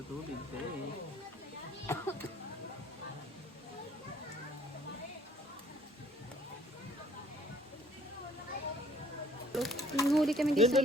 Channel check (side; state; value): both; normal; correlation 0.58